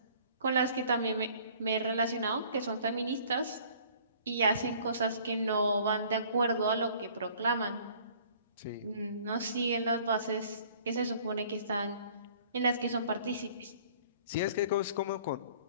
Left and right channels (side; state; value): both; inverted; correlation -0.53